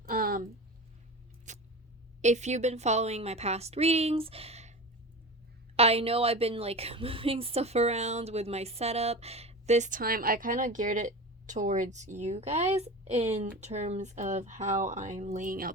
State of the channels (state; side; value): normal; both; correlation 0.30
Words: if you've been following my past readings, I know I've been like moving stuff around with my setup. This time I kind of geared it towards you guys in terms of how I'm laying